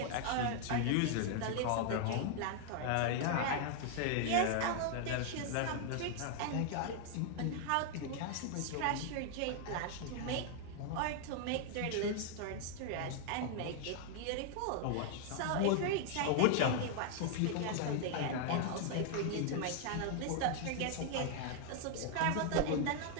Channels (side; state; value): both; different; correlation 0.00